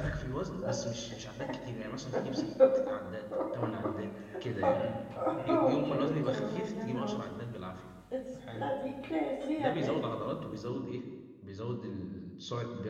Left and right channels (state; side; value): identical; both; correlation 1.00